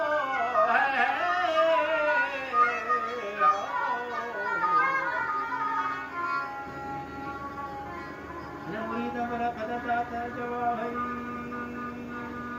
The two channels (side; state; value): both; identical; correlation 1.00